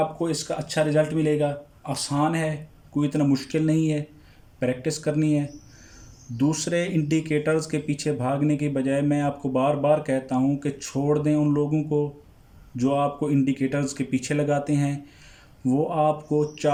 इसका अच्छा रिज़ल्ट मिलेगा। आसान है, कोई इतना मुश्किल नहीं है, प्रैक्टिस करनी है। दूसरे इंडिकेटर्स के पीछे भागने की बजाय मैं आपको बार बार कहता हूँ कि छोड़ दें उन लोगों को जो आपको इंडिकेटर्स के पीछे लगाते हैं। वो आपको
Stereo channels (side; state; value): both; identical; correlation 1.00